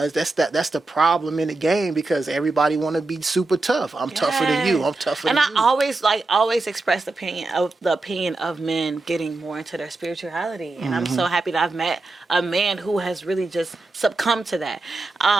that's the problem in the game because everybody want to be super tough. I'm tougher than you. I'm tougher than you. And I always express the opinion of men getting more into their spirituality. And I'm so happy that I've met a man who has really just succumbed to that.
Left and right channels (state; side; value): quieter; left; 3.2 dB